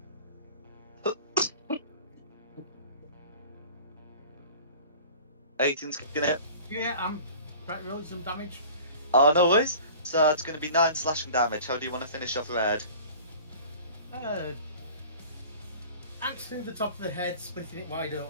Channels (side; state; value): both; inverted; correlation -0.43